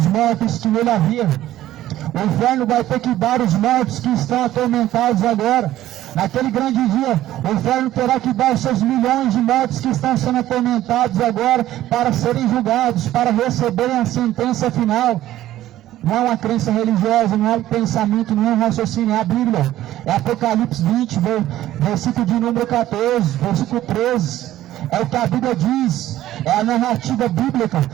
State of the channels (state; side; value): quieter; left; 13.9 dB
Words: mortos que nele havia. O inferno vai ter que dar os mortos que estão atormentados agora. Naquele grande dia, o inferno terá que dar os seus milhões de mortos que estão sendo atormentados agora para serem julgados, para receberem a sentença final. Não é uma crença religiosa, não é um pensamento, não é um raciocínio, é a Bíblia. É Apocalipse 20, versículo de número 14, versículo 13. É o que a Bíblia diz, é a narrativa bíblica,